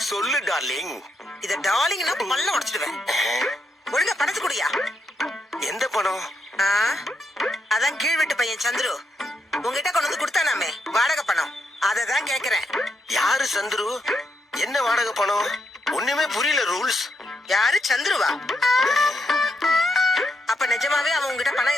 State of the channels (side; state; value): both; normal; correlation 0.80